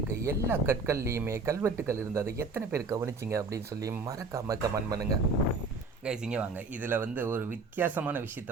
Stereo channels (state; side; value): quieter; left; 3.9 dB